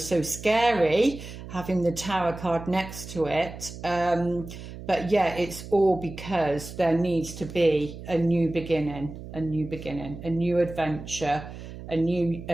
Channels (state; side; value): noise; right; hum, 12 dB below the sound